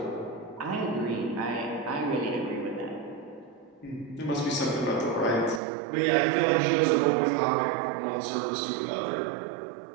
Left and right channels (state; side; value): drops out; left; at 5.6 s